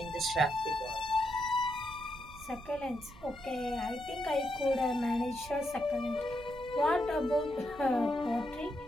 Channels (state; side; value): noise; right; rumble, 18 dB below the sound